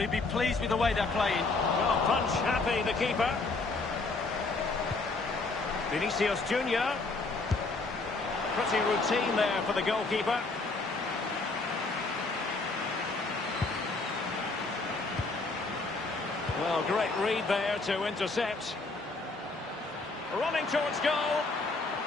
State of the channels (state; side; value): quieter; right; 3.6 dB